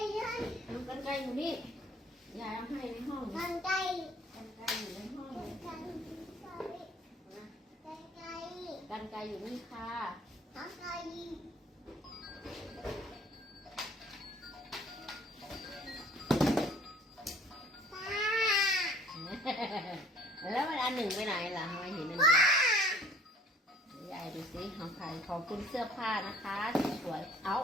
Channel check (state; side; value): normal; both; correlation 0.55